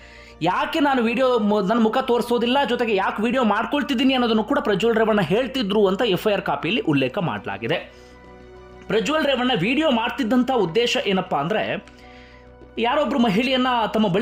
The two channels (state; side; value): identical; both; correlation 1.00